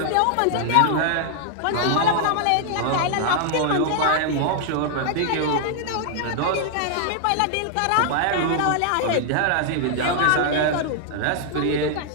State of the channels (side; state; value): both; different; correlation -0.01